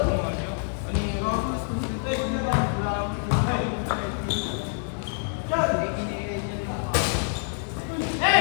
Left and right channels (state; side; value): silent; right; 61 dB below the other